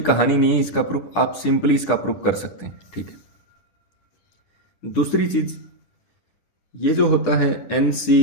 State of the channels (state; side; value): late; right; 10 ms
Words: कहानी नहीं है, इसका प्रूफ आप सिंपली इसका प्रूफ कर सकते हैं। ठीक है। दूसरी चीज, ये जो होता है n